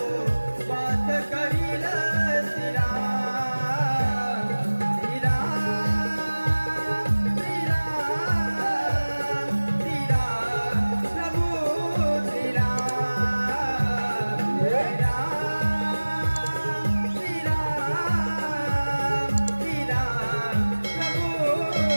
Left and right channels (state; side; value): inverted; both; correlation -1.00